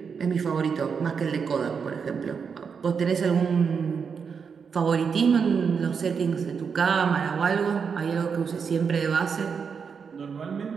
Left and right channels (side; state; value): left; quieter; 6.1 dB